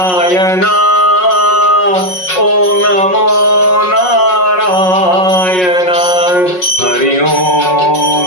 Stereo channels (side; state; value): right; late; 5.5 ms